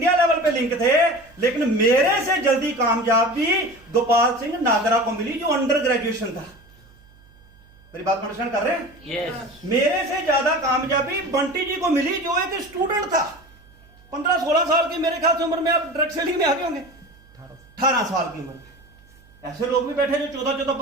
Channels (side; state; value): right; noise; hum, 27 dB below the sound